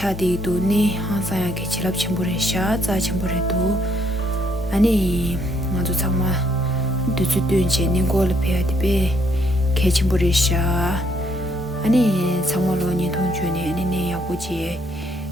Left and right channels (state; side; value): normal; both; correlation 0.70